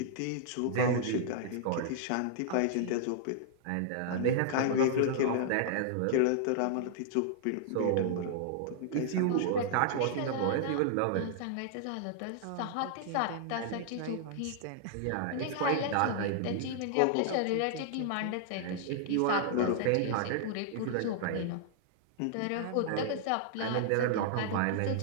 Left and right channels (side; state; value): both; different; correlation -0.01